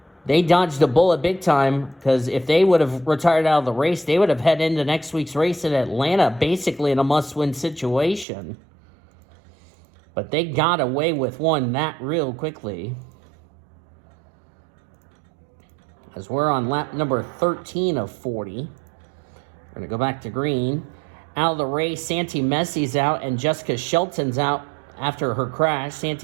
they dodged a bullet big time, because if they would have retired out of the race, they would have headed into next week's race in Atlanta, basically in a must-win situation. But they got away with one that real quickly. As we're on lap number 13 of 40. We're going to go back to green. Out of the race, Santi Messi's out, and Jessica Shelton's out after her crash.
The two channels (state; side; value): drops out; left; at 8.2 s